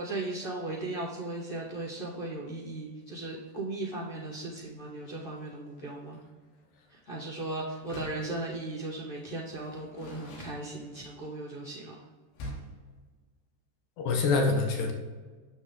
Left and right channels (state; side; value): late; right; 14 ms